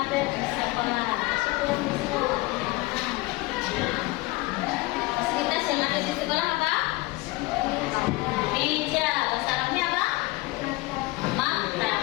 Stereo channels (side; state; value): right; quieter; 21.2 dB